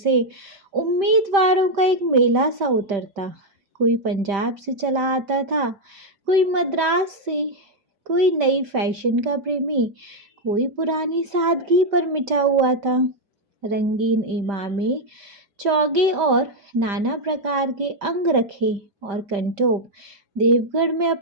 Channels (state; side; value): late; left; 5.1 ms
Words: उम्मीदवारों का एक मेला सा उतरता। कोई पंजाब से चला आता था, कोई मद्रास से, कोई नई फैशन का प्रेमी, कोई पुरानी सादगी पर मिटा हुआ था। रंगीन इमामे, चौगे और नाना प्रकार के अंग रखे और कंटोप देवगढ़ में